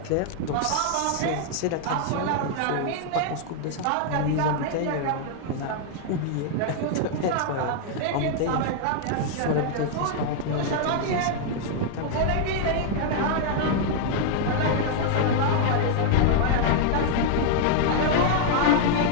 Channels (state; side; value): different; both; correlation 0.00